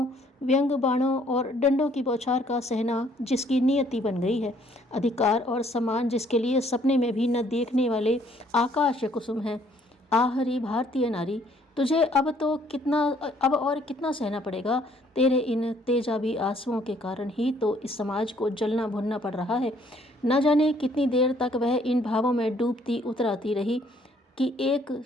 व्यंग बाणों और डंडों की बौछार का सहना जिसकी नियति बन गई है। अधिकार और सम्मान जिसके लिए सपने में भी न देखने वाले आकाश कुसुम है। आहरी भारतीय नारी, तुझे अब और कितना सहना पड़ेगा? तेरे इन तेजाबी आंसुओं के कारण ही तो इस समाज को जलना भुनना पड़ रहा है। न जाने कितनी देर तक वह इन भावों में डूबती उतराती रही कि एक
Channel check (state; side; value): normal; both; correlation 0.63